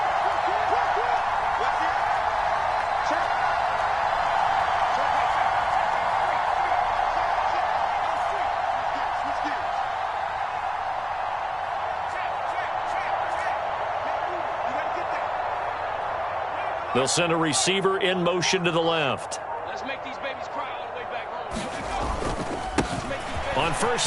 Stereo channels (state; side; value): identical; both; correlation 1.00